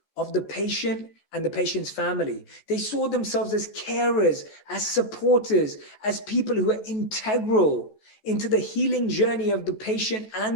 of the patient and the patient's family. They saw themselves as carers, as supporters, as people who are integral into the healing journey of the patient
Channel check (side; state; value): right; late; 14 ms